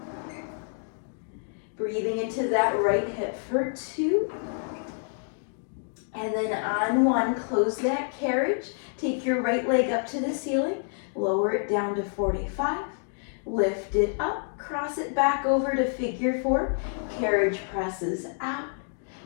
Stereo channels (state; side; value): silent; right; 59 dB below the other